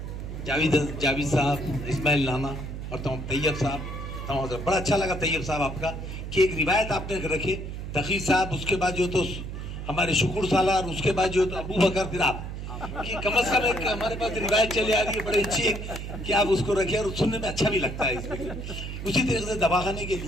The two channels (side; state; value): right; noise; hum, 7 dB below the sound